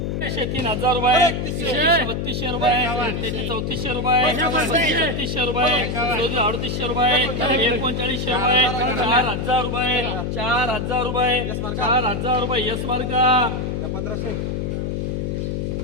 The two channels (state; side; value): noise; left; hum, 2 dB below the sound